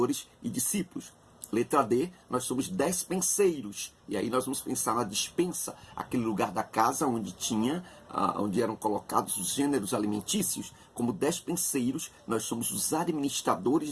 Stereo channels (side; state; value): both; identical; correlation 1.00